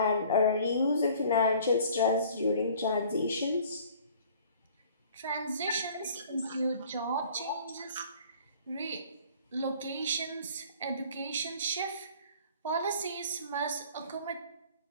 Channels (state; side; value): inverted; both; correlation -0.51